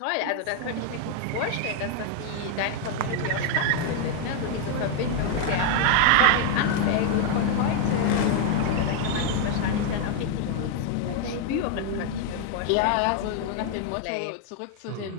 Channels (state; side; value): different; both; correlation 0.00